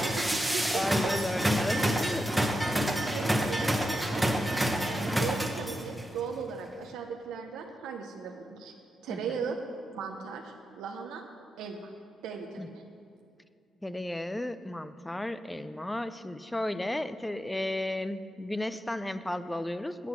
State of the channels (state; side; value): normal; both; correlation 0.87